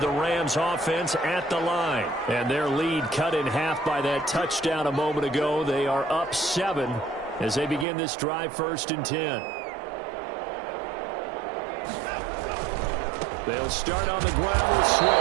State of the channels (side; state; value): left; drops out; at 7.9 s